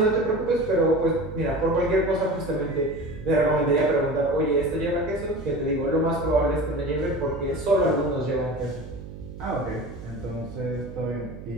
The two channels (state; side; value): noise; right; hum, 13 dB below the sound